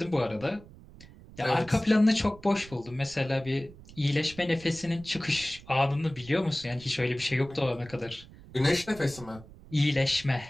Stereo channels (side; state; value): right; noise; rumble, 20 dB below the sound